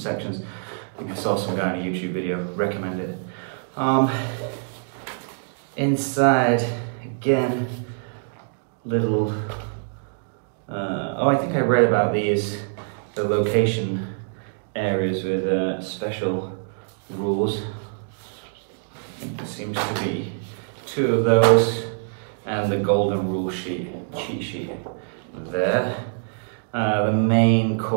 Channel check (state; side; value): silent; left; digital silence